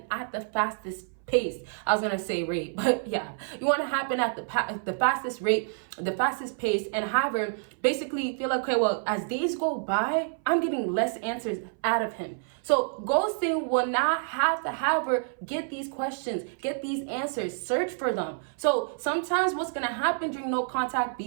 at the fastest pace. I was gonna say rate, but yeah, you want to happen at the fastest rate, the fastest pace, and have her basically feel like, okay, well, as days go by, I'm getting less answers out of him. So ghosting will not have to have her get these questions, get these answers, search for them. So sometimes what's gonna happen during no contact,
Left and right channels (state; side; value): silent; left; 58 dB below the other